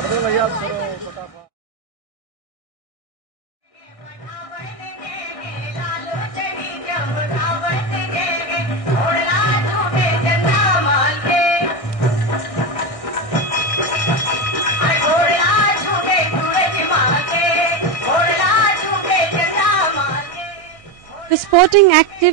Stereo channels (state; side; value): late; right; 1.6 ms